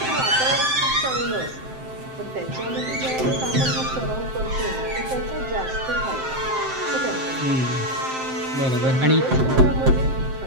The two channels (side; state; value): left; late; 7.7 ms